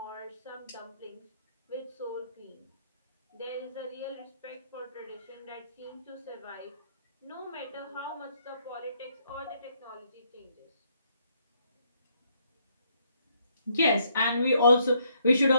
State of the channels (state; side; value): inverted; both; correlation -0.71